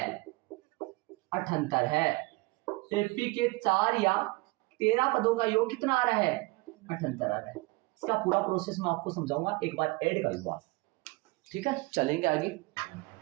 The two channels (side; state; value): left; quieter; 24.1 dB